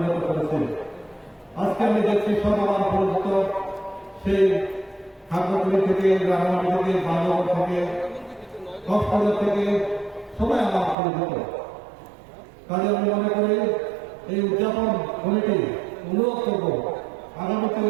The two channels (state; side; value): drops out; left; at 11.0 s